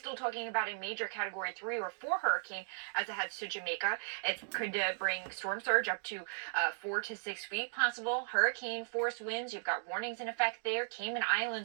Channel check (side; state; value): left; silent; digital silence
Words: talking about a major Category 3 or 4 hurricane as it heads to Jamaica. It could bring storm surge up to 4 to 6 feet possible. Hurricane force winds, you've got warnings in effect there. Cayman